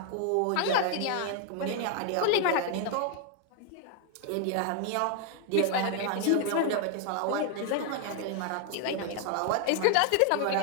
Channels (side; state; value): both; different; correlation 0.00